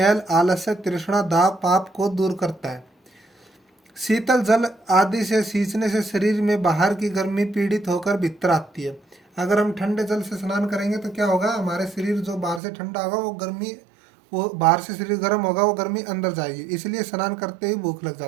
आलस्य, तृष्णा, दाव, पाप को दूर करता है। शीतल जल आदि से सींचने से शरीर में बाहर की गर्मी पीड़ित होकर भीतर आती है। अगर हम ठंडे जल से स्नान करेंगे तो क्या होगा, हमारे शरीर जो बाहर से ठंडा होगा वो गर्मी, वो बाहर से शरीर गर्म होगा, वो गर्मी अंदर जाएगी, इसलिए स्नान करते ही भूख लग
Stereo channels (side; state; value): left; drops out; at 12.6 s